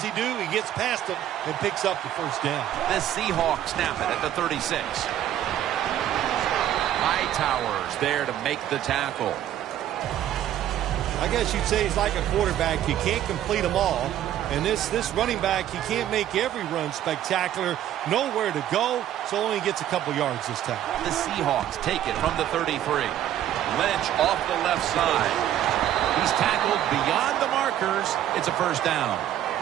do? He gets past them and picks up the first down. The Seahawks snap it at the 36. Hightower's there to make the tackle. I guess you'd say he's like a quarterback. You can't complete them all. And this running back, he can't make every run spectacular. Nowhere to go, so only gets a couple yards this time. The Seahawks take it from the 33. Lynch off the left side. He's tackled beyond the markers. It's a first down.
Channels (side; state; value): left; quieter; 11.7 dB